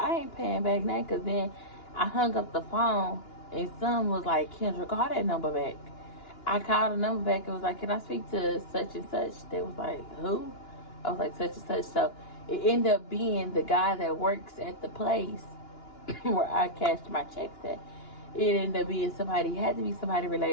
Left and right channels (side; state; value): right; late; 2.9 ms